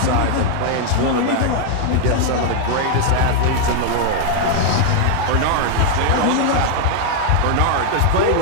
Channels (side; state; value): both; different; correlation 0.00